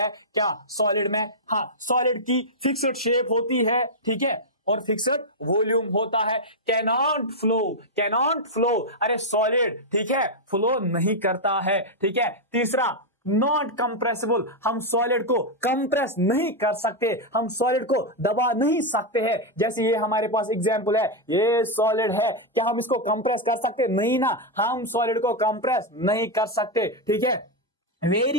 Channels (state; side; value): normal; both; correlation -0.01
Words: क्या सॉलिड में, हाँ सॉलिड की फिक्स्ड शेप होती है, ठीक है, और फिक्स्ड वॉल्यूम होता है। कैनॉट फ्लो, कैनॉट फ्लो, अरे सॉलिड, ठीक है, फ्लो नहीं करता है। ठीक है, तीसरा नॉट कंप्रेसिबल, हम सॉलिड को कंप्रेस नहीं कर सकते, हम सॉलिड को दबा नहीं सकते हैं। जैसे ये हमारे पास एग्जांपल है, ये सॉलिड है, क्या हम इसको कंप्रेस कर सकते? नहीं ना, हम सॉलिड को कंप्रेस नहीं कर सकते। ठीक है,